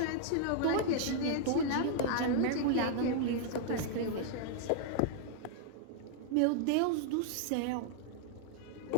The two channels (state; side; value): different; both; correlation -0.01